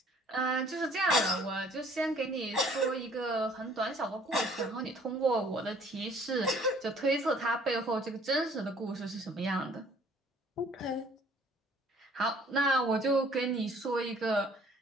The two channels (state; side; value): normal; both; correlation 0.57